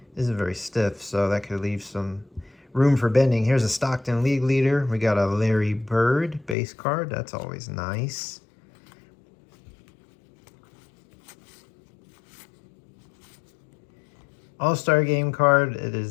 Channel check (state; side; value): drops out; right; at 6.6 s